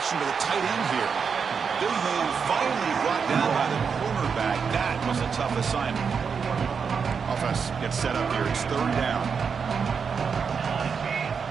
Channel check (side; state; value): left; quieter; 6.1 dB